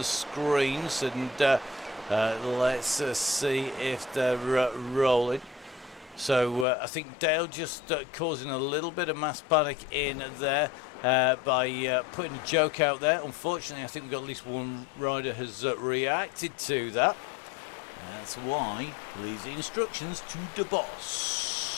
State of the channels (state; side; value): drops out; right; at 6.7 s